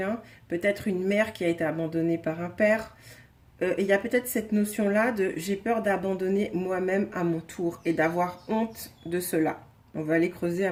peut-être une mère qui a été abandonnée par un père. Et il y a peut-être cette notion-là de j'ai peur d'abandonner moi-même à mon tour et d'avoir honte de cela. On va aller creuser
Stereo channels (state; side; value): identical; both; correlation 1.00